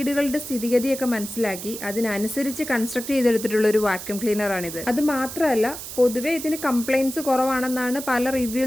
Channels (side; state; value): right; noise; hiss, 10 dB below the sound